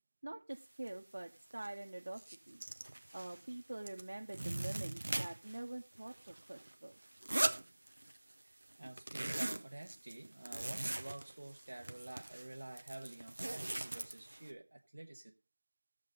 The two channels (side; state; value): both; inverted; correlation -1.00